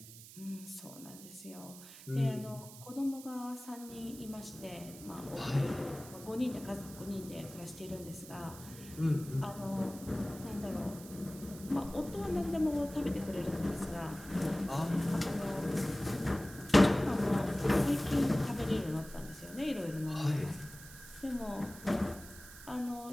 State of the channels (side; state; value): right; noise; hiss, 16 dB below the sound